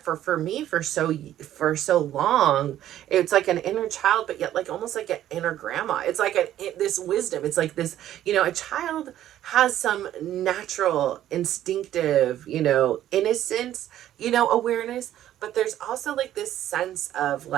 for me for so long, it's like an inner child, but yet like almost like an inner grandma. It's like this wisdom. It's like this, a child has some natural instinctive, innocence, awareness, but there's also like this sense of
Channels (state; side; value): quieter; left; 12.2 dB